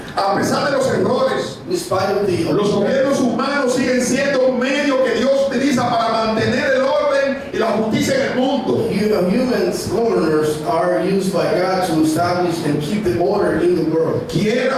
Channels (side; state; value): both; identical; correlation 1.00